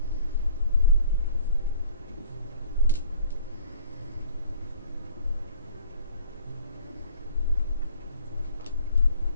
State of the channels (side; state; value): both; inverted; correlation -0.51